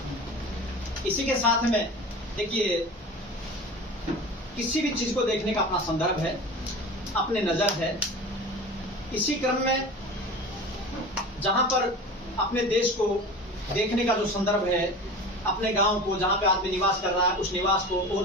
इसी के साथ में देखिए, किसी भी चीज को देखने का अपना संदर्भ है, अपने नजर है। इसी क्रम में जहां पर अपने देश को देखने का जो संदर्भ है, अपने गांव को जहां पे आदमी निवास कर रहा है, उस निवास को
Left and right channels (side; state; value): both; normal; correlation 0.34